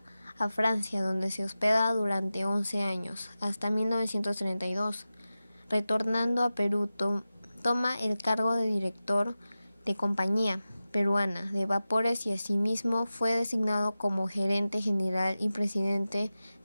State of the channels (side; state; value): both; inverted; correlation -0.95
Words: a Francia, donde se hospeda durante 11 años, hasta 1932. Retornando a Perú, toma el cargo de director de Compañía Peruana de Vapores y asimismo fue designado como gerente general y presidente